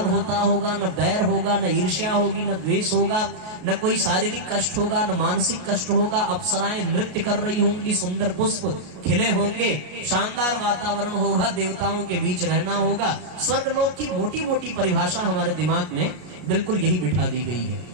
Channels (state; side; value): late; left; 33 ms